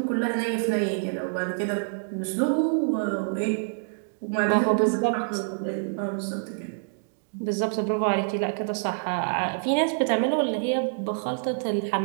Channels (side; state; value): left; silent; digital silence